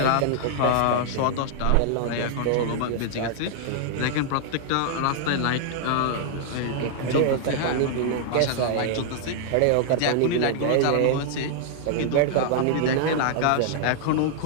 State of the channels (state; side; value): different; both; correlation -0.01